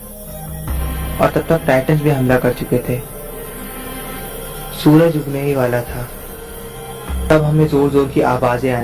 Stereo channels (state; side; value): identical; both; correlation 1.00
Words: और तब तक टाइटन्स भी हमला कर चुके थे। सूरज उगने ही वाला था। तब हमें जोर जोर की आवाजें